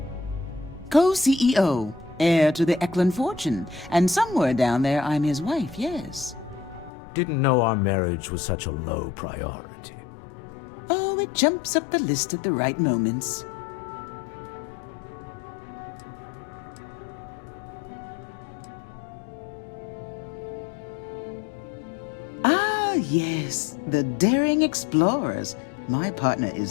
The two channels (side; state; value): right; drops out; at 6.9 s